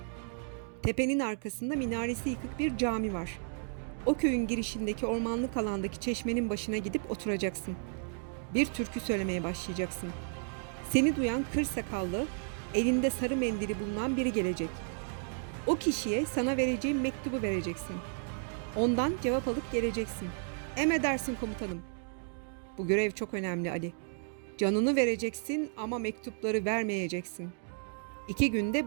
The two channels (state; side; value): silent; left; 56 dB below the other